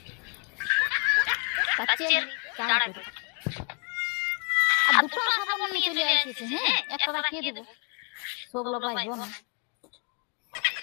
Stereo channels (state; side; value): quieter; right; 39.0 dB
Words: কাচিয়ে চান করে। আর দুটো সাবান নিয়ে চলে আসিছে, হ্যাঁ? একটা রাখিয়ে দেব। সবগুলো পাইবো না।